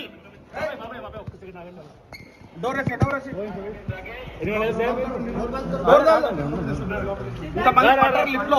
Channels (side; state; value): both; identical; correlation 1.00